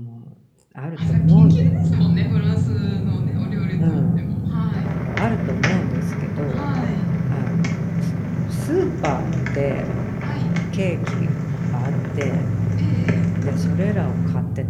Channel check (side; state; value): both; identical; correlation 1.00